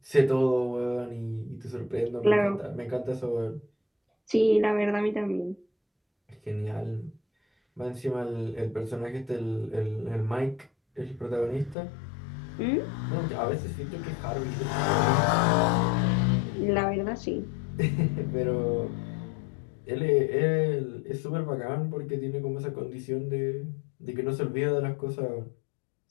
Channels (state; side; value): drops out; right; at 11.8 s